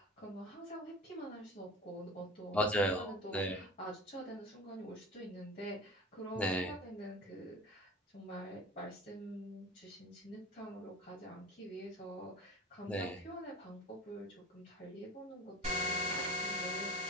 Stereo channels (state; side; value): normal; both; correlation 0.38